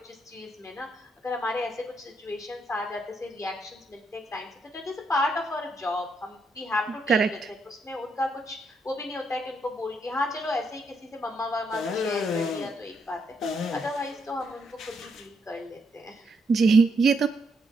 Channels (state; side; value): normal; both; correlation 0.77